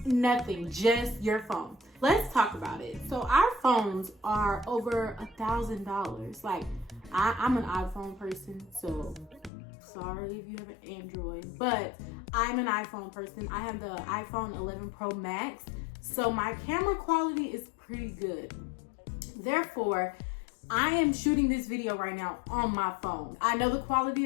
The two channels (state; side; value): drops out; right; at 9.5 s